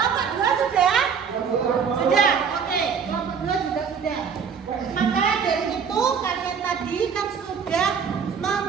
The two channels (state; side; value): quieter; left; 6.6 dB